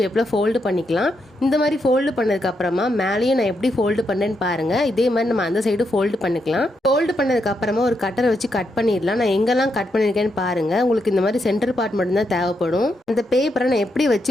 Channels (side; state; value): both; normal; correlation 0.81